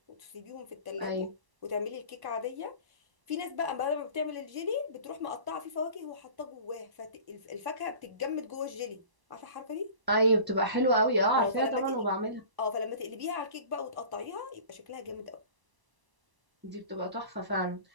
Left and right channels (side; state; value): left; late; 1.0 ms